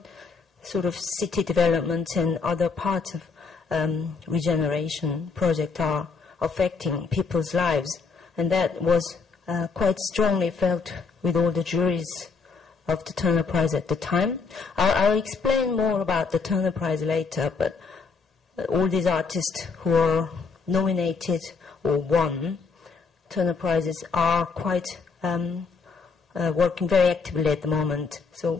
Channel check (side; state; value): right; quieter; 4.7 dB